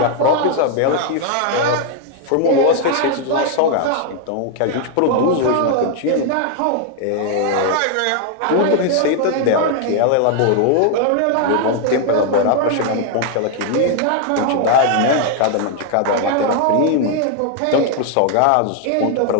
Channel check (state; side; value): different; both; correlation 0.00